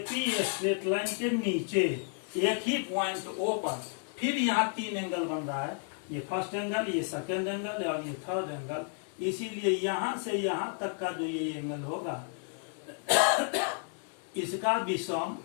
स्ट्रेट लाइन के नीचे एक ही पॉइंट O पर फिर यहाँ 3 एंगल बन रहा है। ये फर्स्ट एंगल, ये सेकेंड एंगल और ये थर्ड एंगल। इसीलिए यहां से यहां तक का जो ये एंगल होगा इसका भी सम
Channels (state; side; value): quieter; right; 38.2 dB